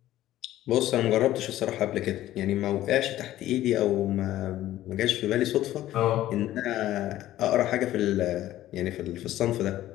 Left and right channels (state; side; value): quieter; right; 14.1 dB